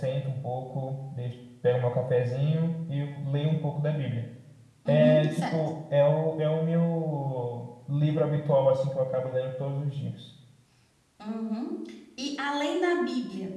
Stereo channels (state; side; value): identical; both; correlation 1.00